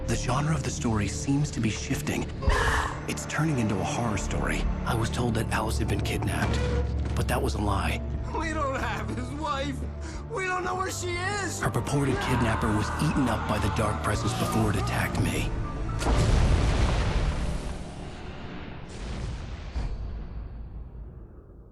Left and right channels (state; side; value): identical; both; correlation 1.00